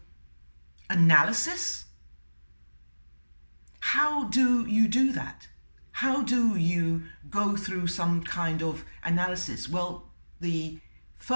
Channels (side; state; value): both; inverted; correlation -1.00